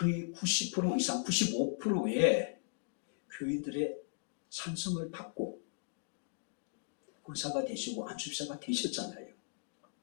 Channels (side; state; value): right; silent; digital silence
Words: 90% 이상 95%의 교인들의 찬성을 받고 권사가 되시고 안수사가 되셨잖아요.